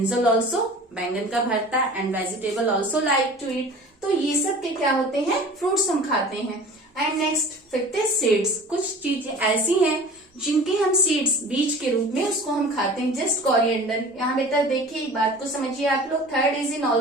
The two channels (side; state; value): both; normal; correlation 0.41